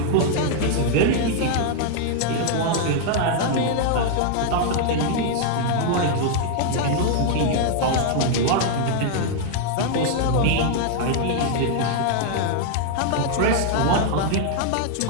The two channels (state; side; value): different; both; correlation 0.00